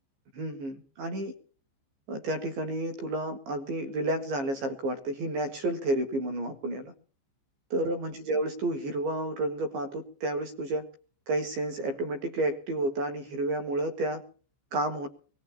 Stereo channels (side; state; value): left; late; 15 ms